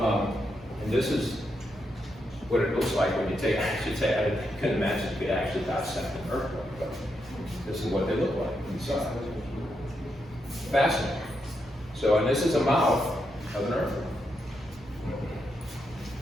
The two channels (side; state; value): both; normal; correlation 0.82